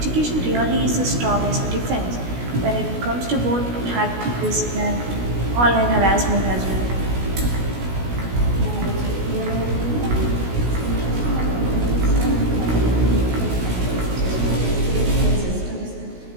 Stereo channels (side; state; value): left; late; 16 ms